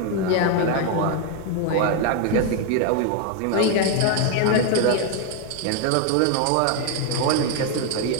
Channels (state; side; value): different; both; correlation 0.01